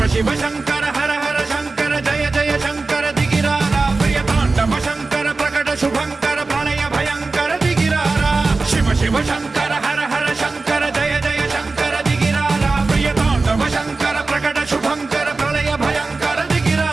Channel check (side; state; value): left; quieter; 3.7 dB